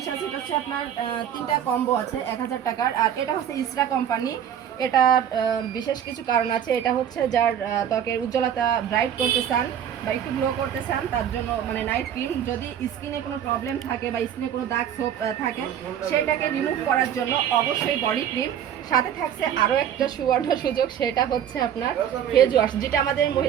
আছে, এটা হচ্ছে আপনার 3টা কম্বো আছে 1000 টাকার। আর এটা হচ্ছে ইসরা কোম্পানি। এটার বিশেষ কিছু কারণ আছে। এটা হচ্ছে যার ত্বকের উজ্জ্বলতা ব্রাইট করতে চান বা একটু গ্লো করতে চান তার জন্য, মানে নাইট ক্রিম। যদি স্কিনে কোনো প্রবলেম থাকে বা স্কিনে কোনো দাগ ছোপ থাকে সেটাকে রিমুভ করার জন্য অবশ্যই বডি ক্রিম। সাথে থাকছে আরও একটা সুবর্ণ সুযোগ, সেটা হচ্ছে আপনার ফেস ওয়াশ, যেটা আমাদের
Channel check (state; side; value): quieter; left; 9.6 dB